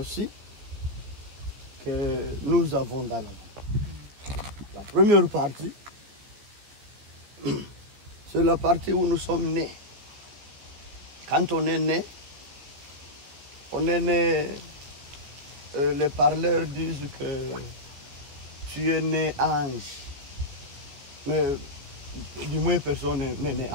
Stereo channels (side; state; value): left; late; 14 ms